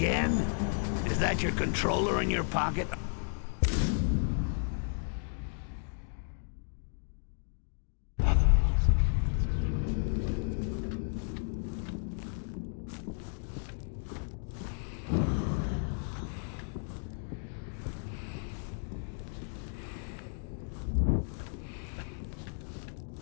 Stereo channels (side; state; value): right; silent; 55 dB below the other